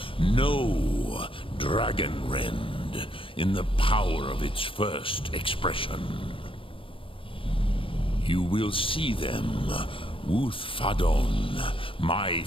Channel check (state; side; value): late; right; 0.26 ms